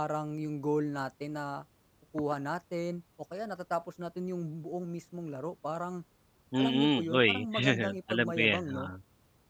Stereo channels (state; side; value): identical; both; correlation 1.00